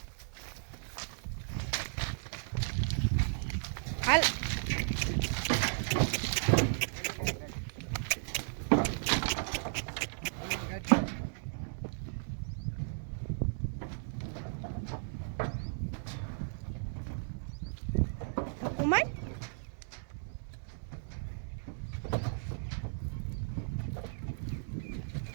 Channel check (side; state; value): left; silent; digital silence